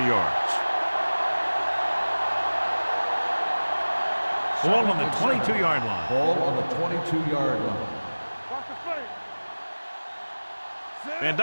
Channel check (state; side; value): inverted; both; correlation -1.00